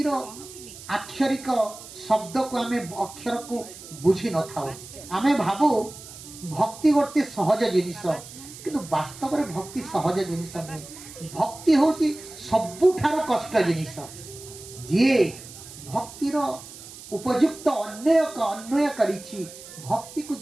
आक्षरिक शब्द को आमे अक्षर को बुझी न थाओ। आमे भाबो भक्ति गोटे सहज जिनिस, किंतु वास्तव में भक्ति सहज जिनिस नहीं। भक्ति होची सबुठारो कष्ट जिनिस। जे भक्तिर उपयुक्त अन्वय करिछि, भक्ति को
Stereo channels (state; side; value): noise; right; hiss, 16 dB below the sound